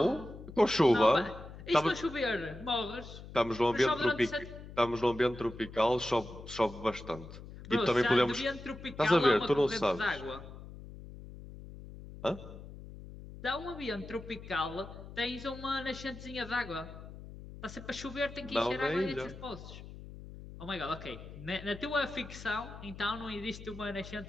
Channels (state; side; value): noise; left; hum, 14 dB below the sound